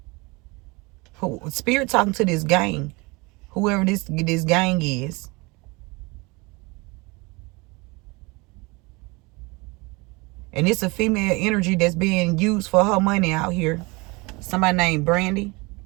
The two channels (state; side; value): quieter; left; 25.7 dB